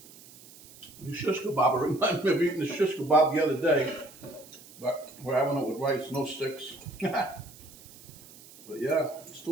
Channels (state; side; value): noise; right; hiss, 21 dB below the sound